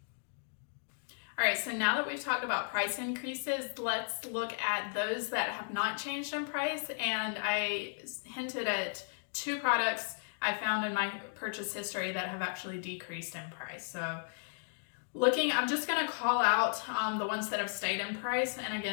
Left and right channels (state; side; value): silent; right; digital silence